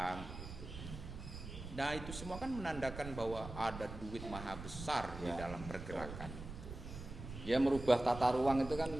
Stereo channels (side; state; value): right; noise; rumble, 10 dB below the sound